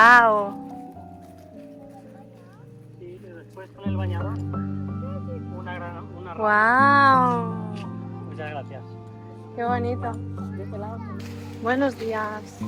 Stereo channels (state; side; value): identical; both; correlation 1.00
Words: Y después con el bañador, una ¡Wow! Muchas gracias. ¡Qué bonito! Buenos días.